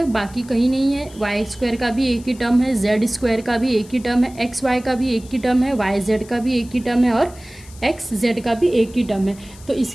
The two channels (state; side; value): noise; left; hiss, 22 dB below the sound